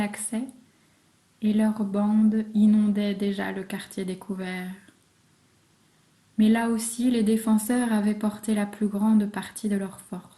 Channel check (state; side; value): identical; both; correlation 1.00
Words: accès, et leurs bandes inondaient déjà le quartier découvert. Mais là aussi, les défenseurs avaient porté la plus grande partie de leurs